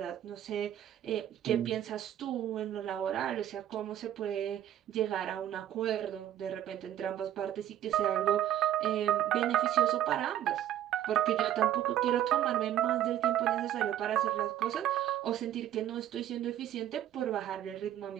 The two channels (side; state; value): left; quieter; 11.7 dB